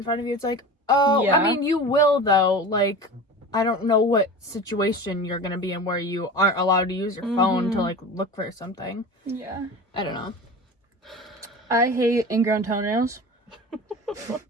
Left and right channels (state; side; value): normal; both; correlation 0.33